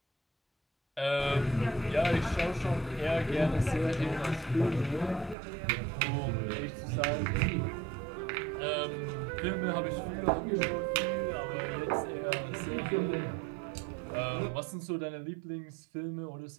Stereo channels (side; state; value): left; drops out; at 5.4 s